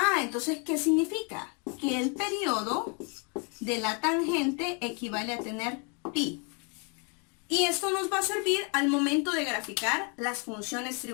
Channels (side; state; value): right; quieter; 35.4 dB